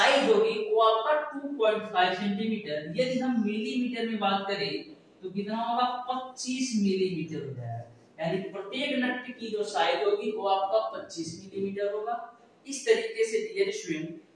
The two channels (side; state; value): both; identical; correlation 1.00